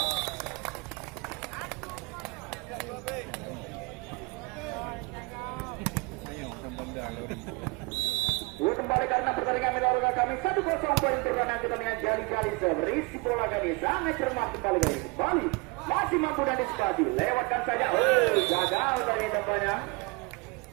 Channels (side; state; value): left; quieter; 27.5 dB